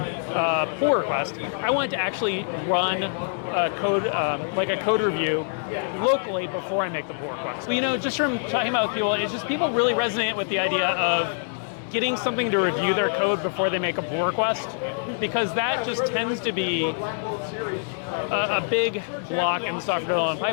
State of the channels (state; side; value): silent; right; digital silence